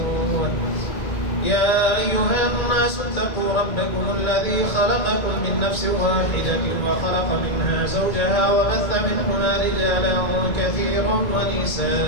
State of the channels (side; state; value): right; late; 2.2 ms